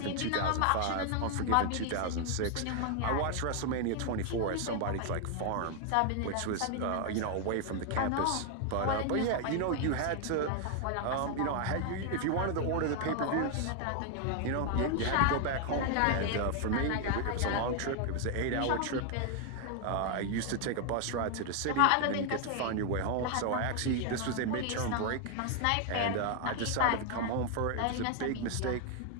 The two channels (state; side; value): different; both; correlation 0.00